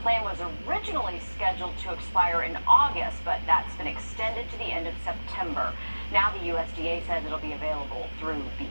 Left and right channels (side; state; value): both; inverted; correlation -1.00